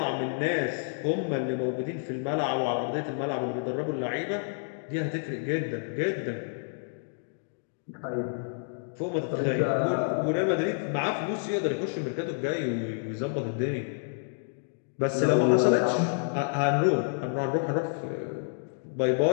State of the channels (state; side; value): silent; right; digital silence